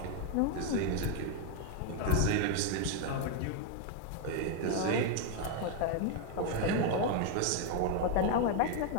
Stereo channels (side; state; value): both; different; correlation 0.01